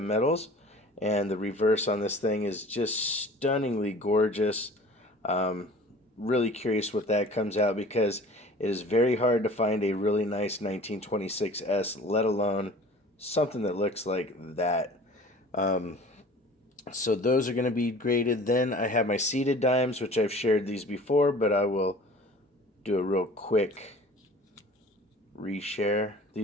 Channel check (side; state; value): both; normal; correlation 0.45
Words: metals. And the reverse on this thing is just stunningly gorgeous. Um, really curious what that comes out because it is very hard to find a really nice 1926S, let alone something that looks like that. Um, so those are going to be graded. Then I have my seated dimes, which I've shared these before, but I will do a real quick reshare.